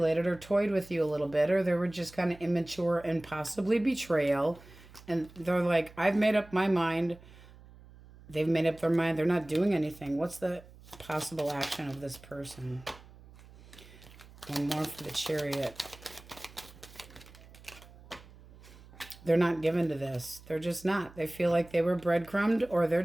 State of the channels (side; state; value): right; noise; hum, 21 dB below the sound